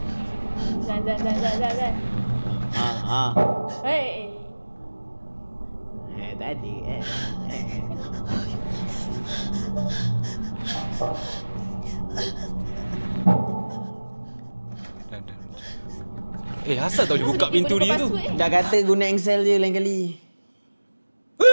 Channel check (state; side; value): inverted; both; correlation -1.00